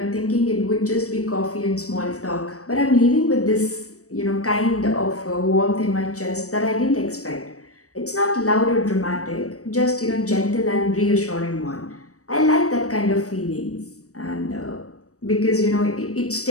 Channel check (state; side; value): late; right; 0.65 ms